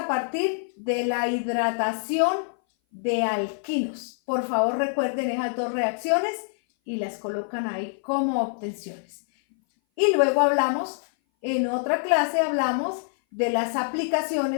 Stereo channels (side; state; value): right; silent; 58 dB below the other